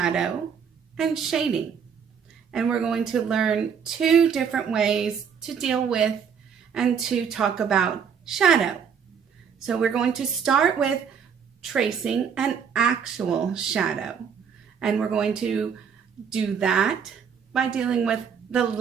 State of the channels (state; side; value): quieter; left; 7.0 dB